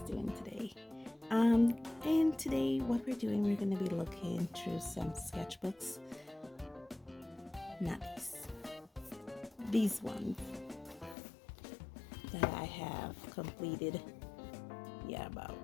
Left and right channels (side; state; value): right; drops out; at 11.2 s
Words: doing today? And today what we're doing, we're going to be looking through some sketchbooks. Not these ones that I have completed. Yeah, about